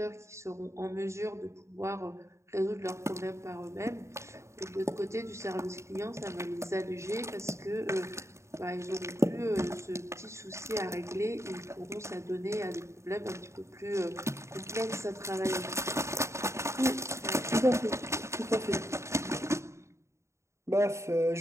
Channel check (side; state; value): left; late; 0.14 ms